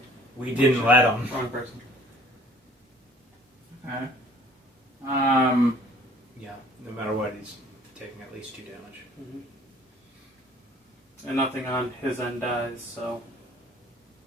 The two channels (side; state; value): both; normal; correlation 0.54